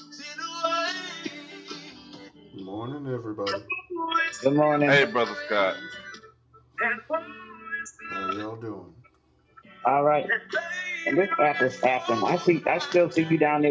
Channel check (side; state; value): both; identical; correlation 1.00